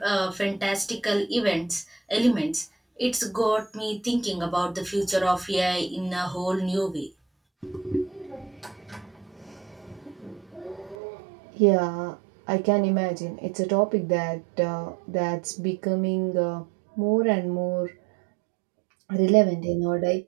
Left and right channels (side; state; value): left; drops out; at 11.0 s